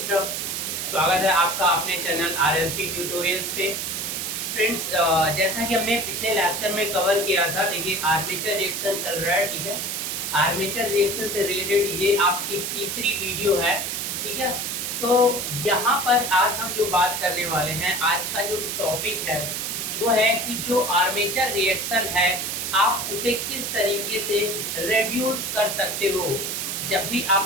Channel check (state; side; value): noise; right; hiss, 3 dB below the sound